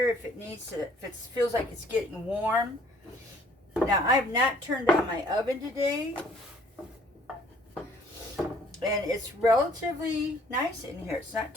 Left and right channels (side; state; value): both; normal; correlation 0.59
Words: if it needs to, if it feels like it's getting warm. Now I have not turned on my oven today, and it's relatively nice in here. It's not